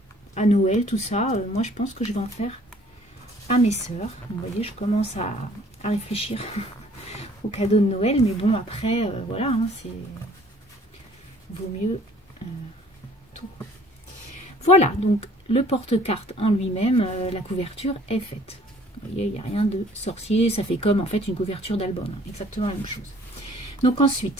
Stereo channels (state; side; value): normal; both; correlation 0.56